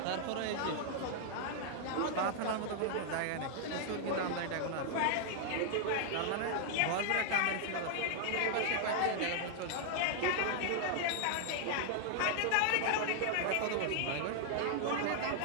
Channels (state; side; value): different; both; correlation 0.00